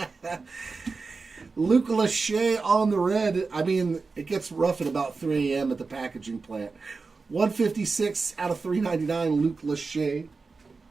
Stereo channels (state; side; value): quieter; left; 4.3 dB